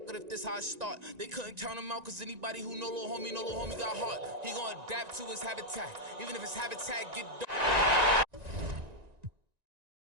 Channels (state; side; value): late; left; 1.9 ms